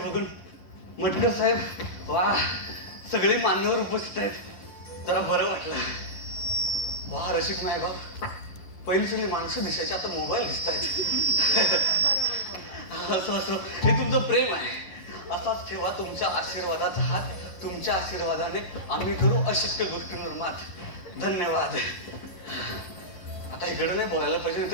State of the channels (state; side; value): late; right; 11 ms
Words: मटकर साहेब, वा, सगळे मान्यवर उपस्थित आहेत. जरा बरं वाटलं. वा रसिक मायबाप, पहिली सगळी माणसं दिसायची, आता मोबाईल दिसत आहेत. असं असं हे तुमचं प्रेम आहे. असाच ठेवा तुमच्या आशीर्वादाचा हात. तुमच्या आशीर्वादाने आम्ही करू अशक्य गोष्टींवर मात. धन्यवाद. आता इकडे नाही बोलायला पाहिजे,